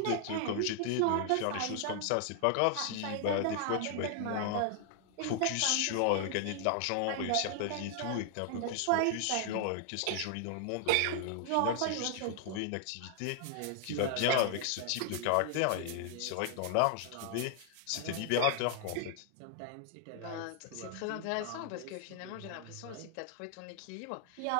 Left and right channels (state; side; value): different; both; correlation 0.00